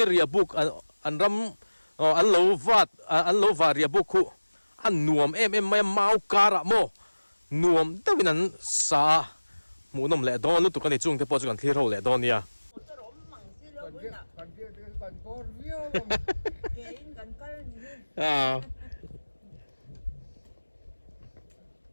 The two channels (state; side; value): inverted; both; correlation -1.00